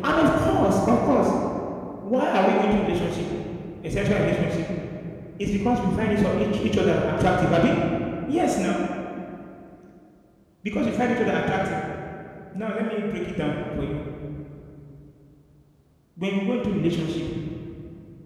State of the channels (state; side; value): identical; both; correlation 1.00